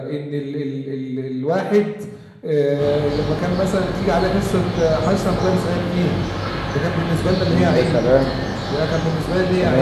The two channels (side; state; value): both; identical; correlation 1.00